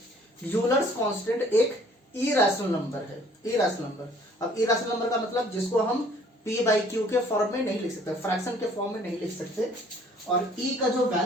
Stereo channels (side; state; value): both; normal; correlation 0.57